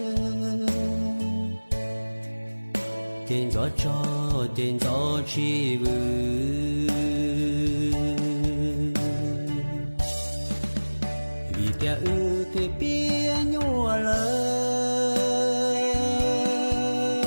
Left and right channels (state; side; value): inverted; both; correlation -1.00